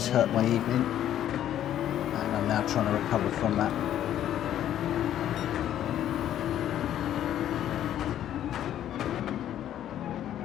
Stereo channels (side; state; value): right; quieter; 11.3 dB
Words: hurt my evening, and I'm now trying to recover from that.